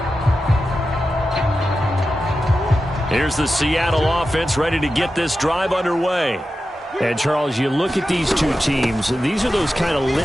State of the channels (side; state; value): both; normal; correlation 0.92